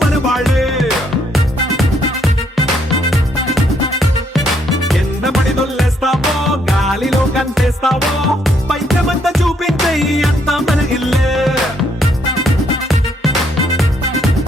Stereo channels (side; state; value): both; normal; correlation 0.71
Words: మన వాళ్ళే ఎన్న పడి దొల్లేస్తావో గాలిలో కంటేస్తావో పైకమంతా చూపించే అంతా మన ఇల్లే